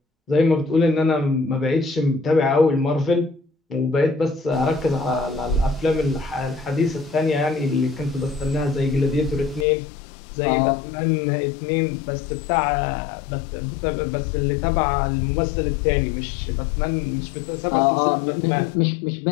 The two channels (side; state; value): right; drops out; at 9.7 s